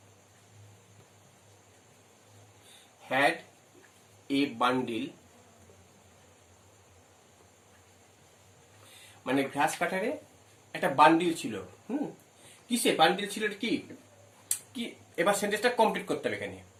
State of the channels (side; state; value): both; identical; correlation 1.00